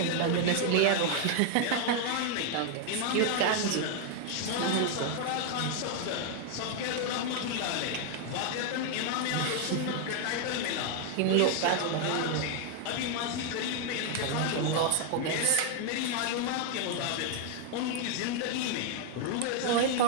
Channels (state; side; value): different; both; correlation 0.00